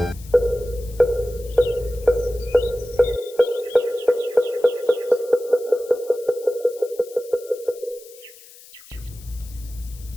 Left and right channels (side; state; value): left; noise; hiss, 21 dB below the sound